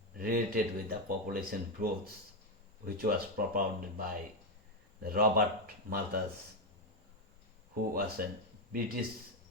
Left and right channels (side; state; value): both; normal; correlation 0.06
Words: related with the population growth, which was propounded by Robert Malthus, who was a British